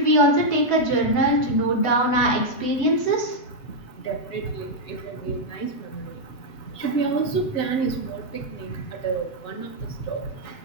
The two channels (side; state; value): right; late; 7.8 ms